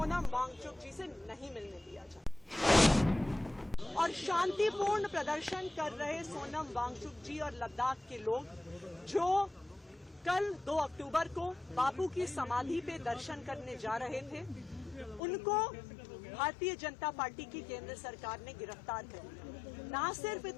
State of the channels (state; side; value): drops out; right; at 15.2 s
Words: वांगचुक जी से नहीं मिलने दिया जाए और शांतिपूर्ण प्रदर्शन कर रहे सोनम वांगचुक जी और लद्दाख के लोग जो कल 2 अक्टूबर को बापू की समाधि पे दर्शन करने जा रहे थे, उनको भारतीय जनता पार्टी की केंद्र सरकार ने गिरफ्तार कर लिया। ना सिर्फ